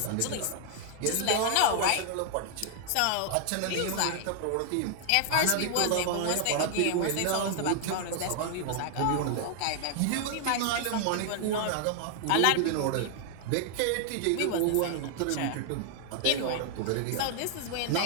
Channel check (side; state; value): both; different; correlation 0.00